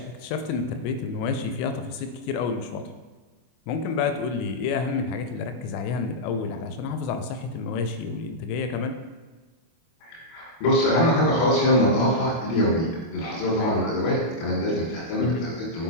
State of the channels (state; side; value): late; right; 25 ms